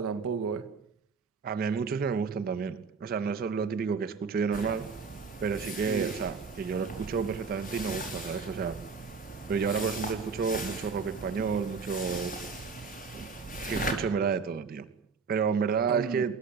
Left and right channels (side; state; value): left; quieter; 5.2 dB